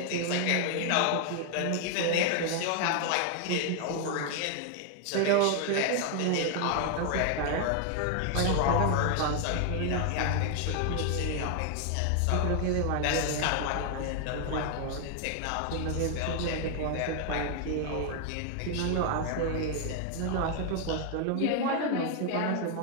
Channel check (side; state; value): both; different; correlation 0.00